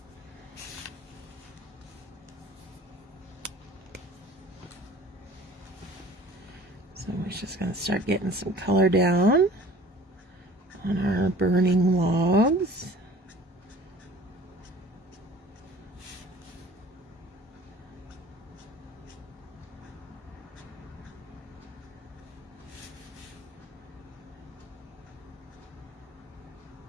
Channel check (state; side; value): normal; both; correlation 0.47